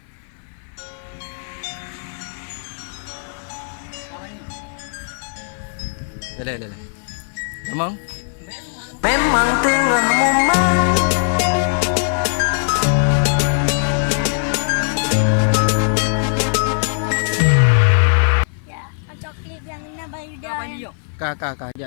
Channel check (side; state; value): right; silent; 56 dB below the other